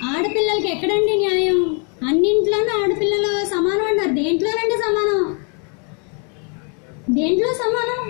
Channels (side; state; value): right; quieter; 38.0 dB